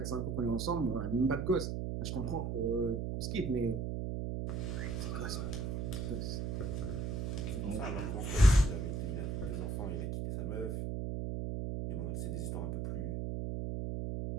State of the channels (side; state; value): right; noise; hum, 2 dB below the sound